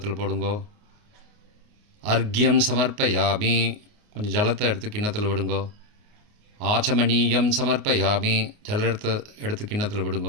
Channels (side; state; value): left; late; 28 ms